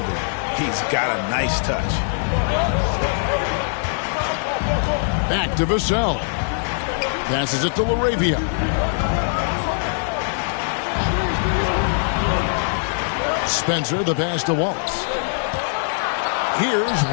He's got a nice touch. Back to Vassell. Passes it to LaRavia. Spencer, the pass to Wallace. Here's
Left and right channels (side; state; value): right; silent; digital silence